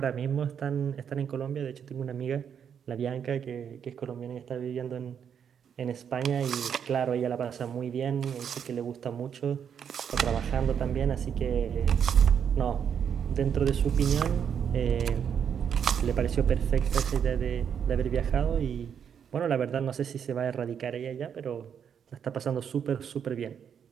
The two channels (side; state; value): left; quieter; 7.9 dB